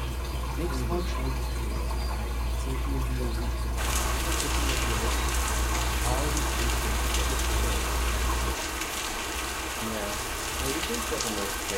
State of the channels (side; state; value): both; identical; correlation 1.00